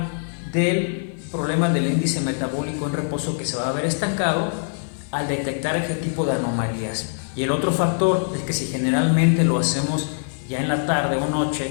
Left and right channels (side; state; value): right; silent; 58 dB below the other